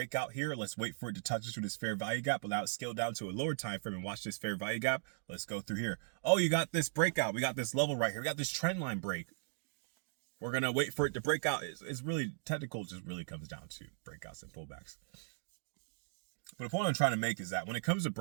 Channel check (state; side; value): silent; left; digital silence